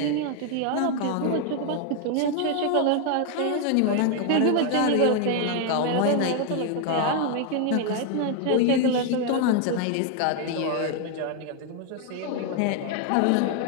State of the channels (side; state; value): both; different; correlation 0.01